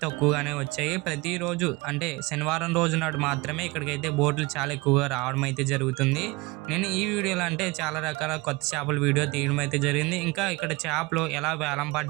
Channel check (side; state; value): left; quieter; 23.7 dB